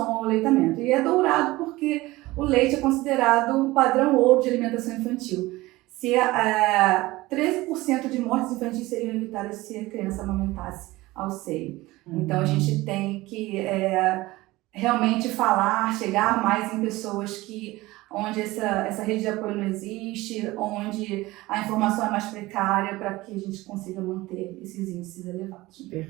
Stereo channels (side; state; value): left; quieter; 19.4 dB